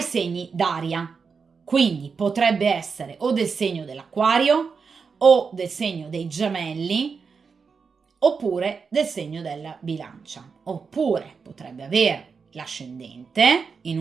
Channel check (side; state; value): left; quieter; 5.4 dB